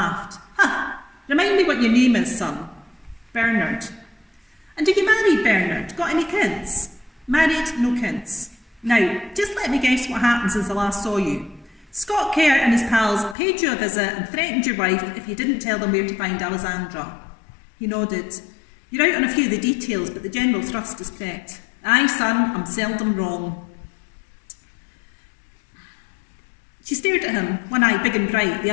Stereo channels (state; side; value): drops out; right; at 13.4 s